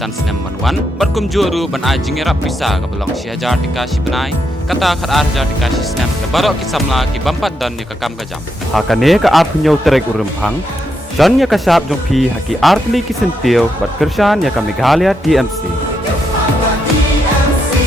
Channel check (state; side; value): normal; both; correlation 0.81